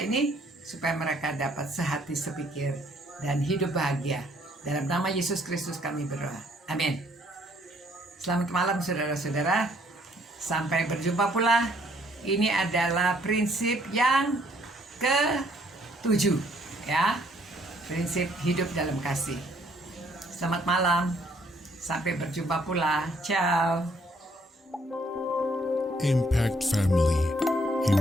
supaya mereka dapat sehati sepikir dan hidup bahagia. Dalam nama Yesus Kristus kami berdoa. Amin. Selamat malam saudara-saudara. Sampai berjumpa pula. Ini adalah prinsip yang ke-7 ya. Prinsip hidup dalam kasih. Selamat malam. Sampai berjumpa pula. Ciao. Impact Family,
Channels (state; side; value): normal; both; correlation 0.65